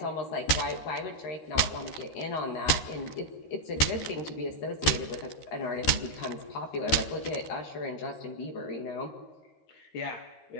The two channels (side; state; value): right; late; 13 ms